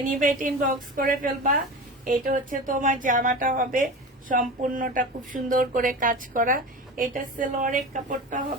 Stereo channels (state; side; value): normal; both; correlation 0.30